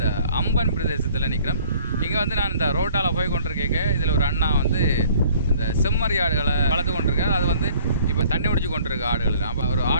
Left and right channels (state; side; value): inverted; both; correlation -0.54